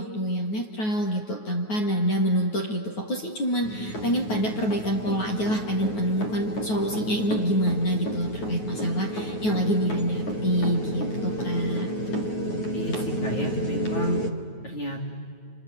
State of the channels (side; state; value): right; late; 9.4 ms